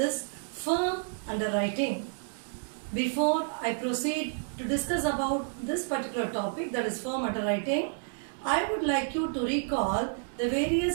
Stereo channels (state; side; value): silent; left; digital silence